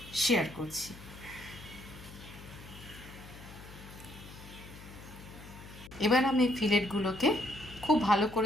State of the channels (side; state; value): left; noise; hum, 16 dB below the sound